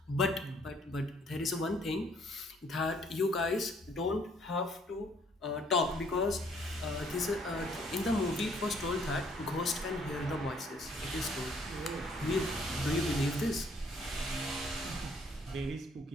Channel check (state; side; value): normal; both; correlation 0.63